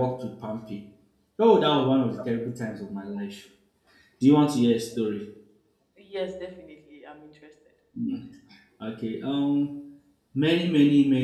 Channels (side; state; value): both; identical; correlation 1.00